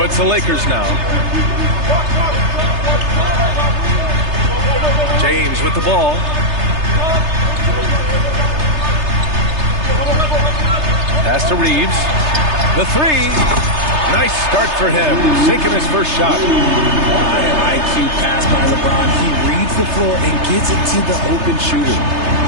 it's the Lakers now. James with the ball. Pass to Reeves. The three. Nice start for him. Sinking his first shot. High IQ pass by LeBron. He reads the floor and gets it to the open shooter.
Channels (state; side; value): late; left; 3.3 ms